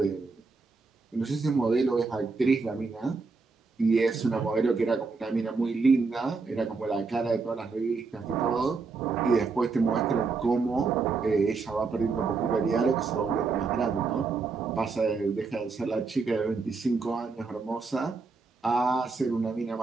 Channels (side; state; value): left; quieter; 4.4 dB